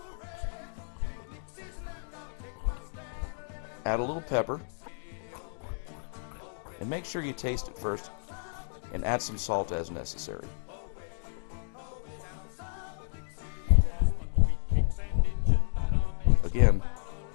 Add a little pepper, and make sure you taste it first, and add some salt as necessary. Again,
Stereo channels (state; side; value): silent; right; digital silence